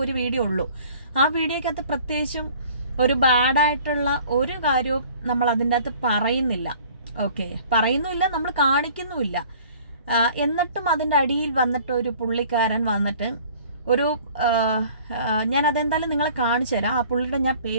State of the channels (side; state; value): both; inverted; correlation -0.51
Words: ഒരു വീഡിയോ ഉള്ളൂ. ആ വീഡിയോക്കകത്ത് പ്രത്യേകിച്ചും ഒരു ബാഡായിട്ടുള്ള ഒരു കാര്യവും നമ്മൾ അതിൻ്റെ അകത്ത് പറയുന്നില്ല. ഓക്കെ, പറയുന്നുമില്ല, നമ്മൾ കാണിക്കുന്നുമില്ല. എന്നിട്ടും അതിൻ്റെ അടിയിൽ വന്നിട്ട് ഒരു പുള്ളിക്കാരൻ വന്നിട്ട് ഒരു ഞാൻ അതെന്തായാലും നിങ്ങളെ കാണിച്ചു തരാം. ആ പുള്ളിയുടെ ഞാൻ